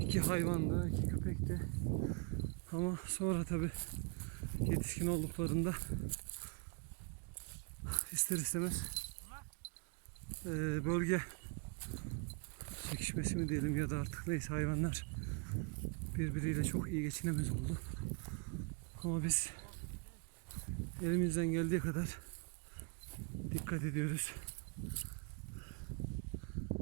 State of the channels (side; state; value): left; quieter; 34.1 dB